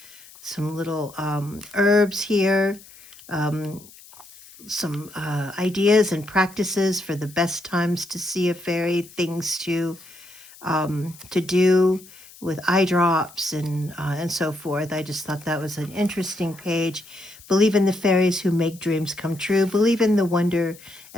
little herbs here, um, some ideas and practices for the best times to see a fairy, things to do with eye drops and so forth. I just thought that was an interesting page. Believe in the fairies who make dreams come true. Believe in the wonder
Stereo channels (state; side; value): noise; left; hiss, 21 dB below the sound